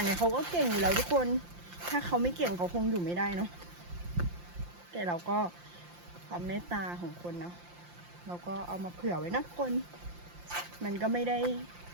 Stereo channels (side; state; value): left; late; 5.7 ms